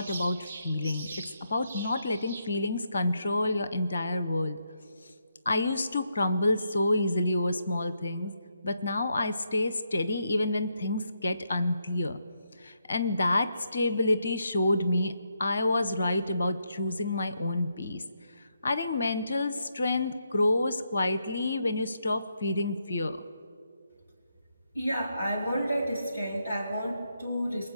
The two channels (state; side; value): inverted; both; correlation -0.80